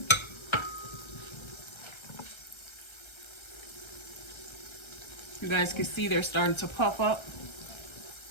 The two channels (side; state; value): right; late; 1.3 ms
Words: You guys can see they're starting to puff up.